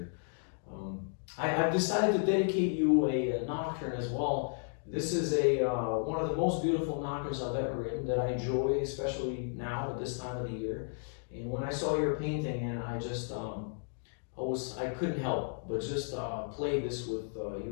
I've decided to dedicate you a nocturne as well. This is one of the most beautiful nocturnes I've ever written that I enjoy, especially now at this time of the year. And when I saw your painting, and I couldn't help but just play this with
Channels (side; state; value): right; silent; digital silence